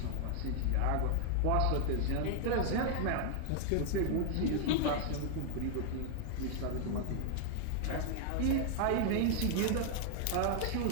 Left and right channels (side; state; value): both; different; correlation 0.00